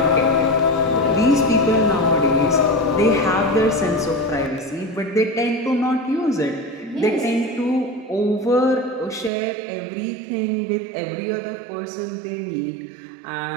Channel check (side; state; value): left; drops out; at 9.3 s